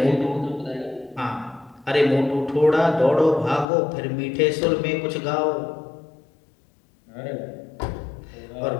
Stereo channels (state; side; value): drops out; right; at 3.7 s